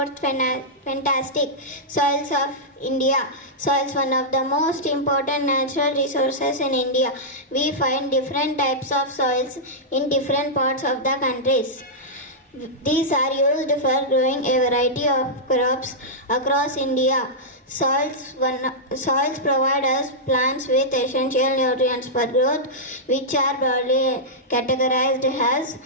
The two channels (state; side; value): normal; both; correlation -0.10